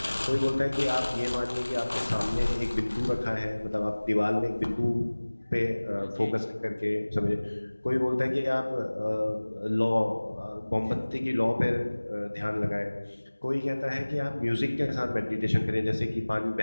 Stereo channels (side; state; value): both; inverted; correlation -1.00